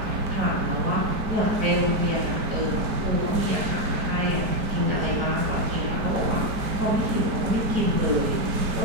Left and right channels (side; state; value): left; late; 4.6 ms